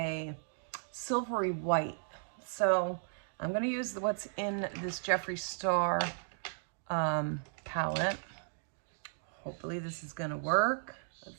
silvery white. So I'm gonna use what's in this Jeffree Star palette. Hopefully this is gonna work.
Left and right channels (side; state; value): left; silent; digital silence